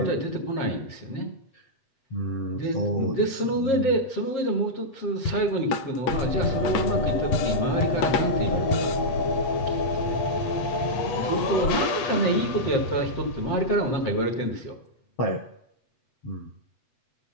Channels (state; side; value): late; right; 8.0 ms